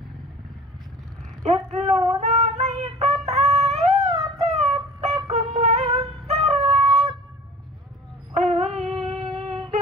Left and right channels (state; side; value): normal; both; correlation 0.44